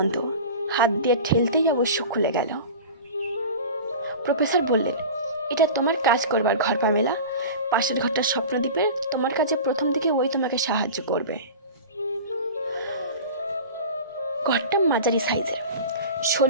হাত দিয়ে ঠেলতেই অবশ্য খুলে গেল। প্রফেসর বললেন, এটা তোমার কাজ করবার ঘর পামেলা। পাশের ঘরটা স্বপ্নদ্বীপের, তোমার কাছে প্রথম দিকে ওই তোমাকে সাহায্য করবে। ঘরটা মাঝারি সাইজের,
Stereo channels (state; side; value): inverted; both; correlation -0.34